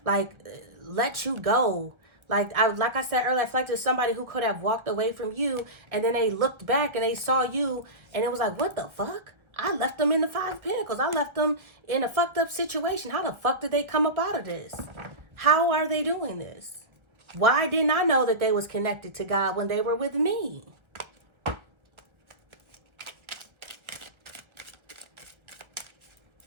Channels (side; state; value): left; late; 1.1 ms